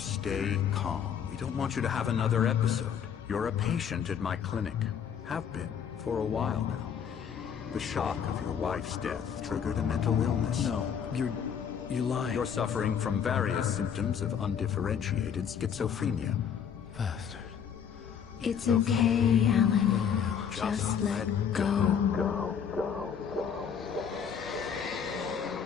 calm. We don't want you to have another episode. You're a patient at my clinic. Have been for a while now. The shock of your wife's death triggered a mental illness. No, you're lying. You're suffering from various symptoms of undifferentiated schizophrenia. Bastard. It's okay, Alan. Just let go.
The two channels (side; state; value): right; quieter; 7.8 dB